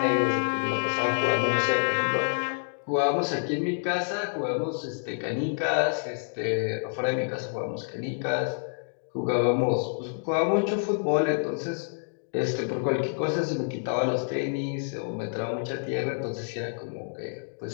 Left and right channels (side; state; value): right; silent; digital silence